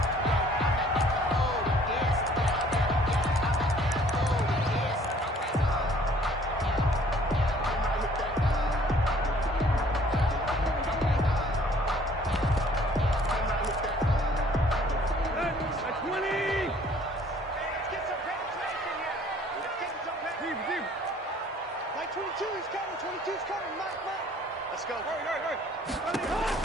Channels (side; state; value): both; normal; correlation 0.57